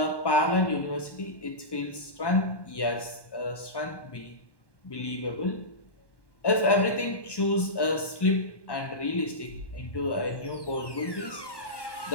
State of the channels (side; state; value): right; late; 1.1 ms